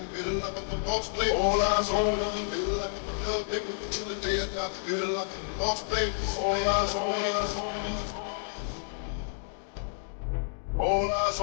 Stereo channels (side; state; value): right; silent; digital silence